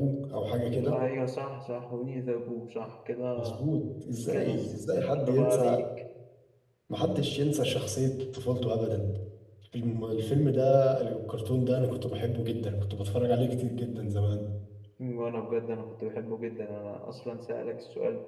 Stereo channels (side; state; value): both; identical; correlation 1.00